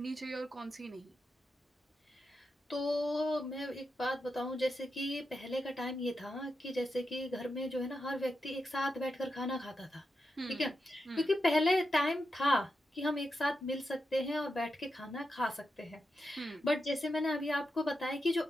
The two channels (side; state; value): both; normal; correlation 0.87